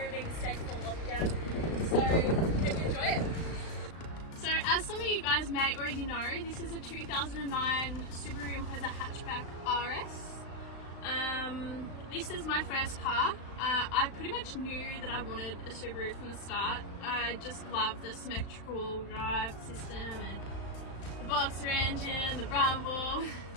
being safe for lockdown, so hope you enjoy it. So as some of you guys may already know, this is a 2009 Subaru Impreza hatchback RS. This is my first car. I pretty much knew that I wanted a Subaru from the start. I just love the symmetrical drive system and the boxer engine, the rumble.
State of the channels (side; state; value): right; late; 36 ms